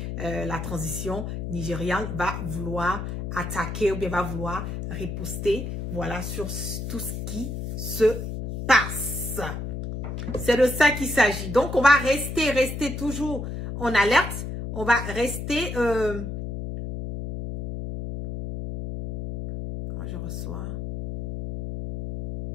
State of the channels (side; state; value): left; noise; hum, 5 dB below the sound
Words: la transition nigériane va vouloir attaquer ou bien va vouloir riposter, voilà, sur tout ce qui se passe. C'est de ça qu'il s'agit. Donc, on va rester toujours en alerte. On va rester... je reçois...